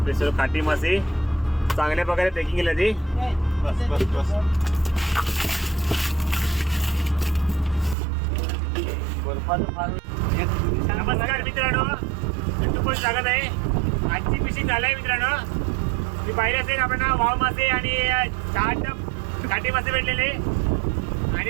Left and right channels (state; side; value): drops out; left; at 8.0 s